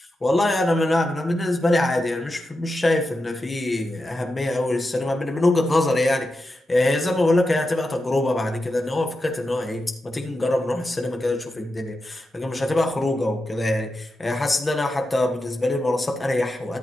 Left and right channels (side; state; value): both; normal; correlation 0.89